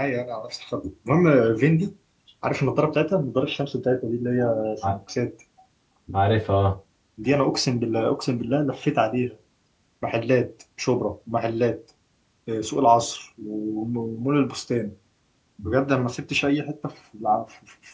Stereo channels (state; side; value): identical; both; correlation 1.00